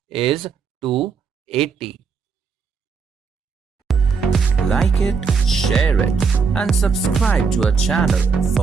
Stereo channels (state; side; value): quieter; left; 5.4 dB